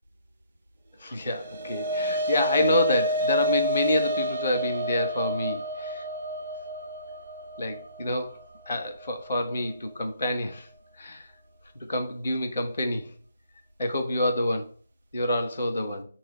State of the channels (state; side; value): inverted; both; correlation -0.61